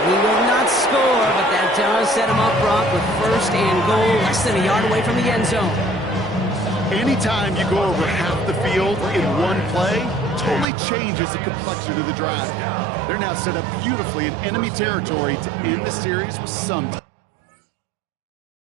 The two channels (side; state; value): left; drops out; at 10.7 s